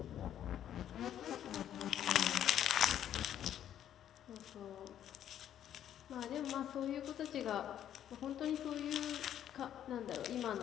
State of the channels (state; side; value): quieter; right; 10.6 dB